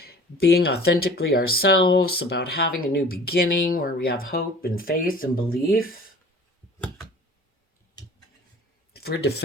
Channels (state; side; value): normal; both; correlation 0.45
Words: being authentically ourselves, about having a new beginning where we have hope and faith and belief. If we're